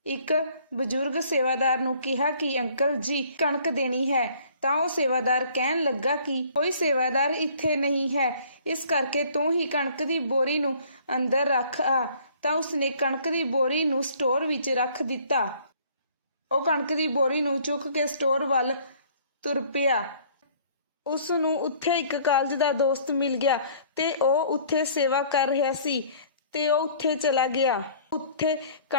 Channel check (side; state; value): both; inverted; correlation -0.56